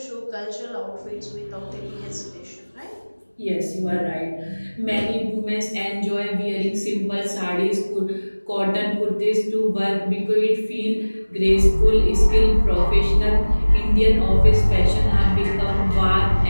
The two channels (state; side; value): inverted; both; correlation -1.00